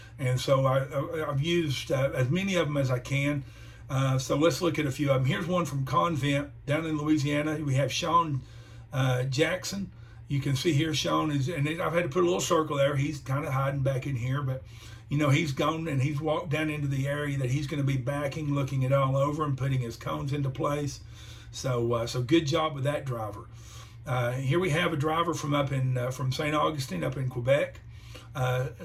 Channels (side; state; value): both; identical; correlation 1.00